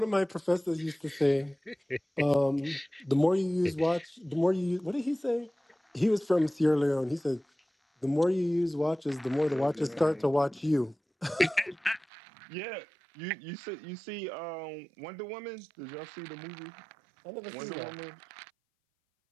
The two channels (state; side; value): drops out; left; at 12.1 s